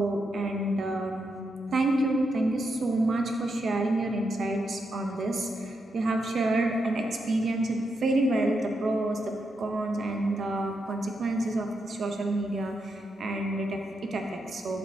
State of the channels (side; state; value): both; normal; correlation 0.83